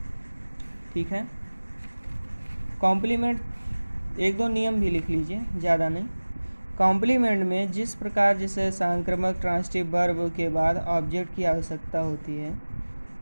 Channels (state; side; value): inverted; both; correlation -1.00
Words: ठीक है, कॉम्प्लीमेंट 1-2 नियम भी लिख लीजिए, ज़्यादा नहीं। कॉम्प्लीमेंट में जिस प्रकार जैसे सांक्रामक ट्रांसिटिव वर्ब के बाद ऑब्जेक्ट की आवश्यकता होती है,